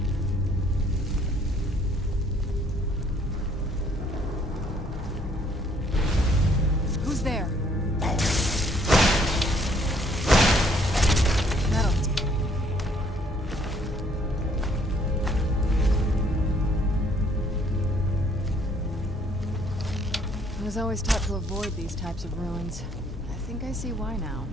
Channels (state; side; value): normal; both; correlation 0.63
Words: Who's there? I was always taught to avoid these types of ruins. I think I see why now.